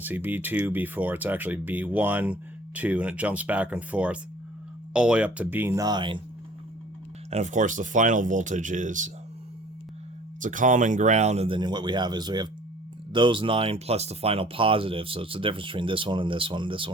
see B2, B4, it's actually B1, 2, and it jumps back and forth all the way up to B9. And of course the final voltage is, it's a common ground, and then what we have is we have those 9 plus the final positive. So it's the difference between this one and this one, this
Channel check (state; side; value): normal; both; correlation 0.52